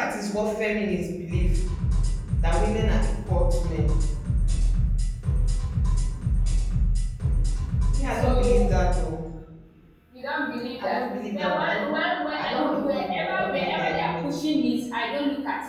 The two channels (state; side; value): identical; both; correlation 1.00